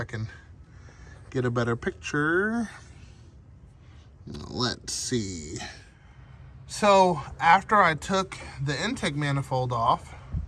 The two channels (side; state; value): both; identical; correlation 1.00